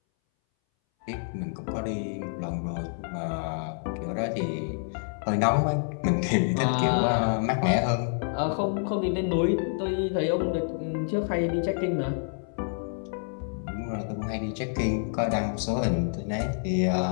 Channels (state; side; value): silent; right; 59 dB below the other